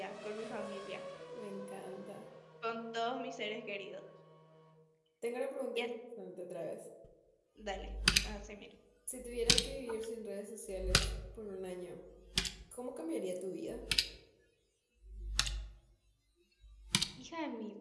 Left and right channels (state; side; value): identical; both; correlation 1.00